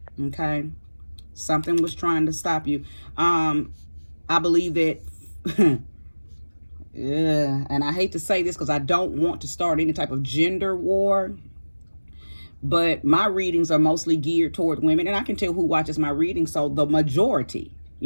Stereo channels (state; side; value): inverted; both; correlation -1.00